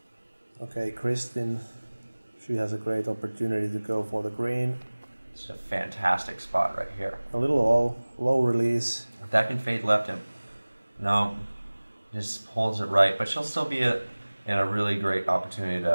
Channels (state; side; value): inverted; both; correlation -1.00